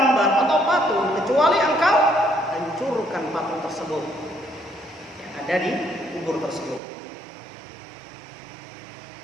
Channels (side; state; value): left; drops out; at 6.8 s